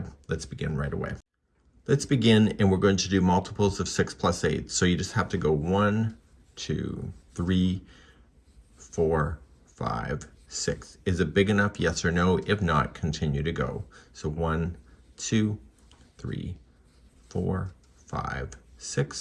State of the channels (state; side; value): identical; both; correlation 1.00